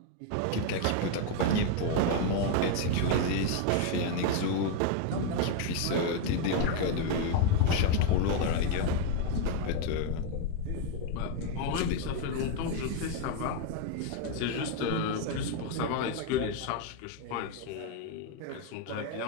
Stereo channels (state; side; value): different; both; correlation 0.01